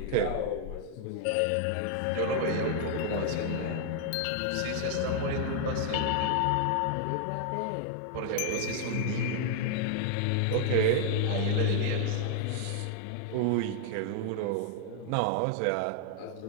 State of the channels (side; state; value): both; different; correlation 0.00